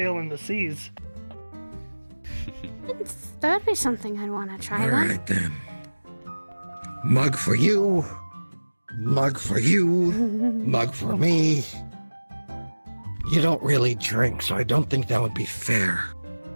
the seas. That would be something I'd want to try All then. right then. Mug for you. Mug for you. Mug for me. You don't really drink, so I don't think that would be fair.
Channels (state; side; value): inverted; both; correlation -1.00